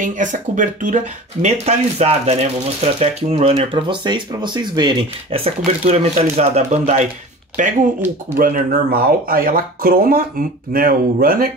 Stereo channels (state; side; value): normal; both; correlation 0.38